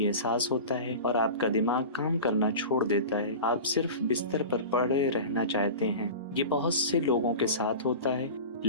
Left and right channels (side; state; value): both; inverted; correlation -0.32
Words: احساس ہوتا ہے اور آپ کا دماغ کام کرنا چھوڑ دیتا ہے، آپ صرف بستر پر پڑے رہنا چاہتے ہیں؟ یہ بہت سے لوگوں کے ساتھ ہوتا ہے،